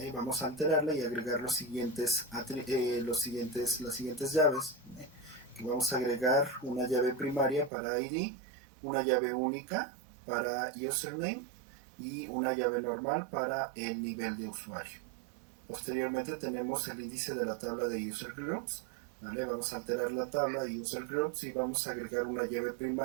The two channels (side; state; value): left; drops out; at 7.7 s